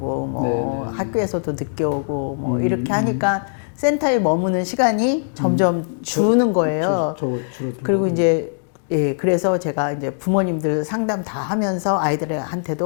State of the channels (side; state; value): right; silent; digital silence